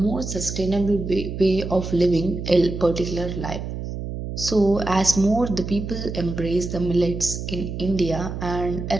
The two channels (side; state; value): right; noise; hum, 6 dB below the sound